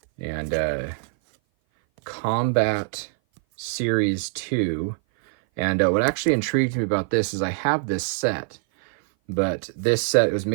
And Combat Series 2. And what actually intrigued me about this is I have this set. But this set was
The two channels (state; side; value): silent; left; 58 dB below the other